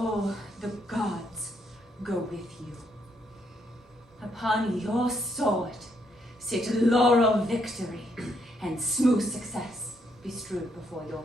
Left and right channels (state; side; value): normal; both; correlation 0.75